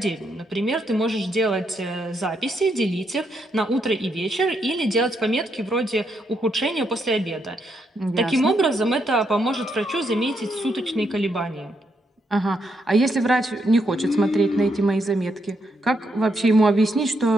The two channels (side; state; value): both; normal; correlation 0.78